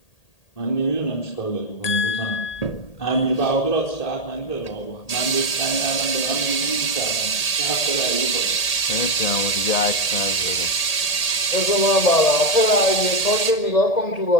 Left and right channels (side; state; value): right; late; 1.8 ms